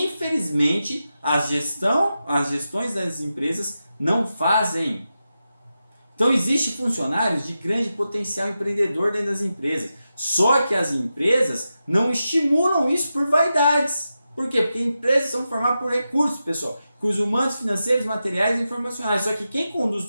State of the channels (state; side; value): inverted; both; correlation -0.90